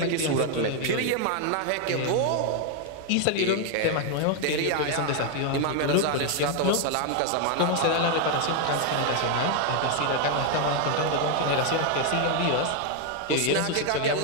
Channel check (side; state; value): both; different; correlation 0.00